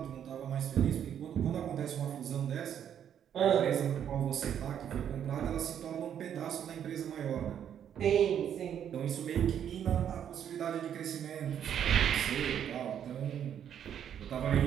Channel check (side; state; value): left; quieter; 9.3 dB